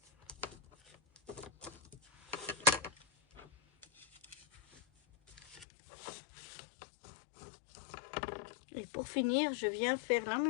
Et pour finir, je viens faire la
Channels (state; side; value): drops out; right; at 5.7 s